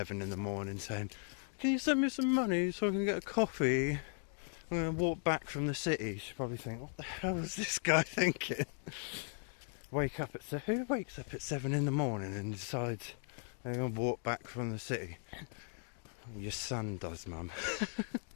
in the morning saying, can you send me some money so I can get a coffee? I'm going to walk back from the city. She'll probably think, what the hell is this guy thinking? Who wakes up at 7 in the morning and decides they're going to walk back from the city? Your son does, Mum.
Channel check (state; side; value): silent; right; 53 dB below the other